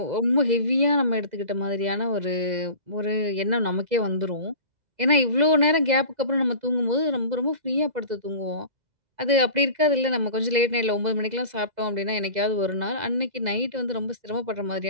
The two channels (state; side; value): late; left; 2.0 ms